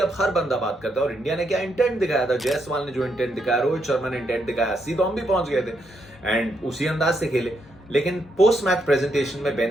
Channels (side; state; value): both; normal; correlation 0.78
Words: हर बंदा बात करता है, और इंडिया ने क्या इंटेंट दिखाया था, जायसवाल ने जो इंटेंट दिखाया, रोहित शर्मा ने इंटेंट दिखाया, 80 तो हम भी पहुंच गए थे एंड उसी अंदाज से खेले। लेकिन पोस्ट मैच प्रेजेंटेशन में बेन